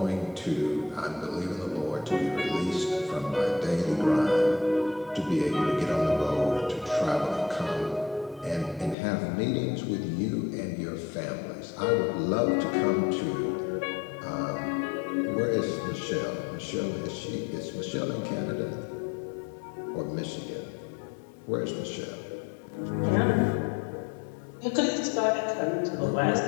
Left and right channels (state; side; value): drops out; right; at 9.0 s